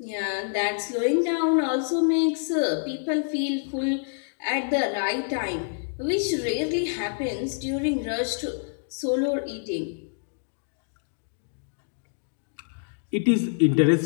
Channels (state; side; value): silent; right; digital silence